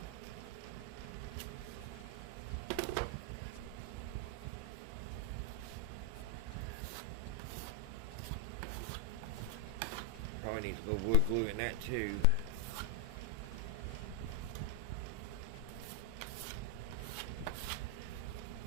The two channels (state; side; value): different; both; correlation 0.00